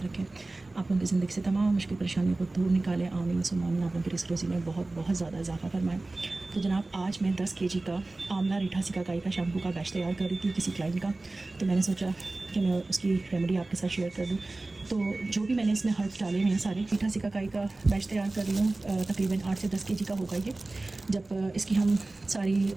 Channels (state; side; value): quieter; left; 3.0 dB